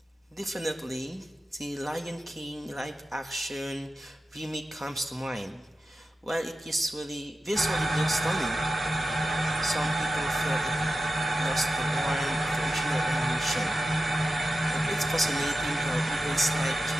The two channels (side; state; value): both; normal; correlation 0.92